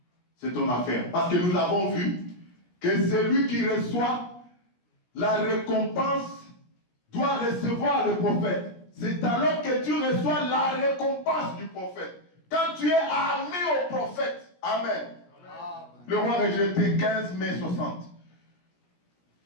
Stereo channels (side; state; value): right; late; 17 ms